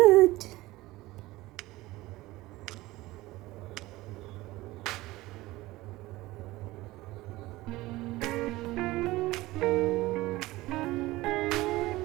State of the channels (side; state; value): left; quieter; 18.8 dB